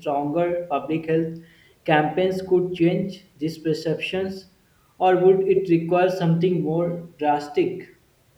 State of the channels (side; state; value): both; identical; correlation 1.00